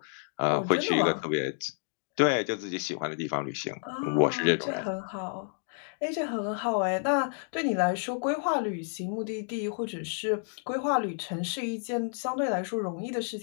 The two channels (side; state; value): right; silent; 58 dB below the other